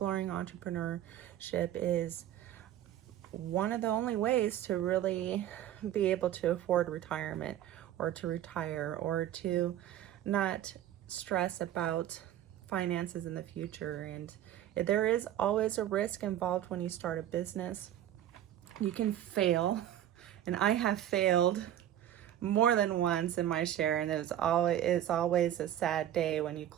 entrepreneurship is one of the only ways to really be able to afford retirement, or to retire, or to not stress about finances in the future. And there is always a risk involved when you start a business. You can fail, and I have failed more than once in my share, and it's always a sad day when you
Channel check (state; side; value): quieter; left; 11.7 dB